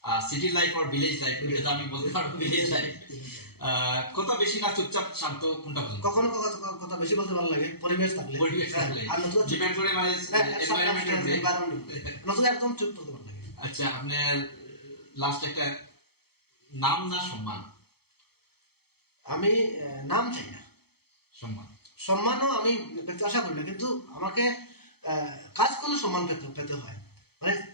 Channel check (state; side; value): late; right; 0.96 ms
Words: সিটি লাইফ আর ভিলেজ লাইফ? এটা তো আমি বলতে পারবো ভিলেজ লাইফ। কথা বেশি না চুপচাপ শান্ত, কোনটা পছন্দ? কখনো কথা বেশি বলতে ভালো লাগে, পরিবেশ থাকলে আর নতুন ডিপেন্ড করে, মানে নতুন একদম চুপ করতে ভালো লাগে। আচ্ছা, আপনার লাস্ট একটা নাম না সম্মান? আমি নাম চাই না, সম্মানও আমি পেতে আশা করি না, কিন্তু আমাকে কাজ করলে সম্মান পেতে হয়, মানে